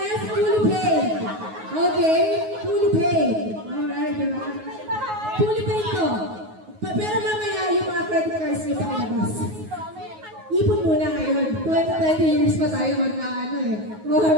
fully paid. Okay? Fully paid. Alright, diba? Fully paid to. Pero mamaya yung mga credit cards nyo pakilabas. Ipon muna ngayon. 20 years pa tayo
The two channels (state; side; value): late; left; 9.4 ms